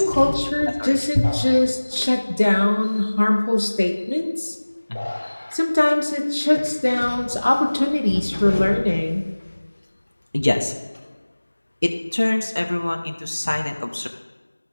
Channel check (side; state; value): both; inverted; correlation -1.00